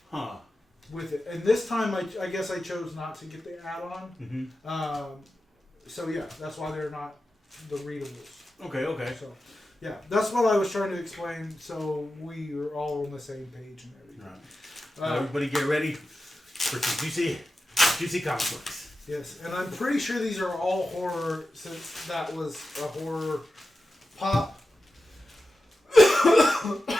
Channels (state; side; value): normal; both; correlation 0.92